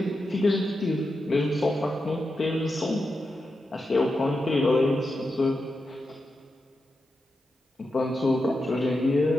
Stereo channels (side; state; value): both; normal; correlation 0.88